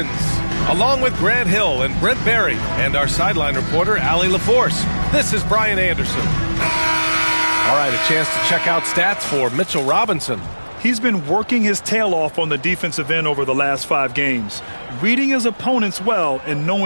along with Grant Hill and Brent Barry and our sideline reporter, Allie LaForce. This is Brian Anderson. All right, a chance to check out stats for Mitchell Robinson. He's been working his tail off on the defensive end over the last 5 games, reading his opponents well and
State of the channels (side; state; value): both; inverted; correlation -1.00